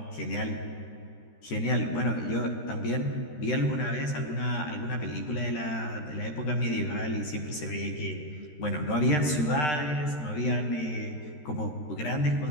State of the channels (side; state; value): right; late; 13 ms